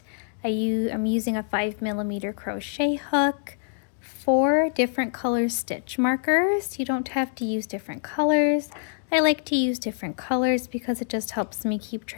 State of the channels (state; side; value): silent; right; digital silence